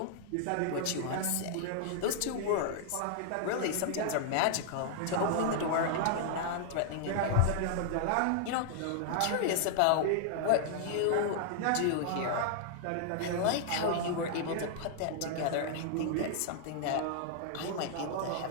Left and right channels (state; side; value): different; both; correlation -0.01